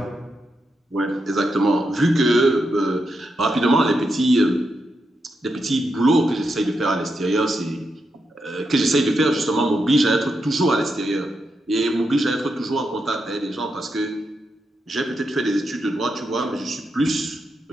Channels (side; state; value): both; normal; correlation 0.84